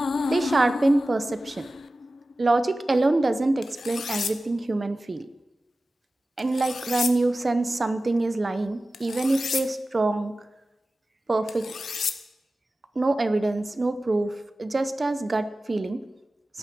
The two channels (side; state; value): both; normal; correlation 0.95